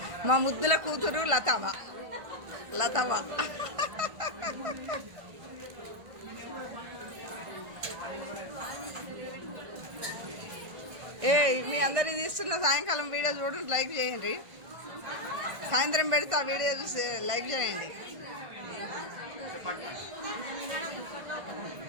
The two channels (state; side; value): late; left; 1.5 ms